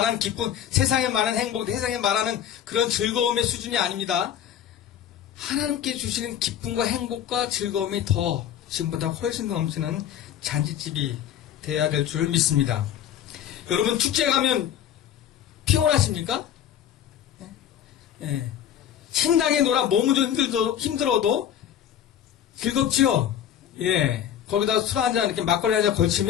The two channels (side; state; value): right; quieter; 10.0 dB